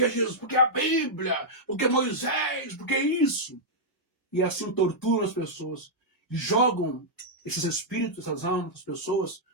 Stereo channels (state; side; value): normal; both; correlation -0.08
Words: Jesus, porque a Bíblia, porque Moisés, porque isso. E assim torturam as pessoas. E jogam esses espíritos, essas almas das pessoas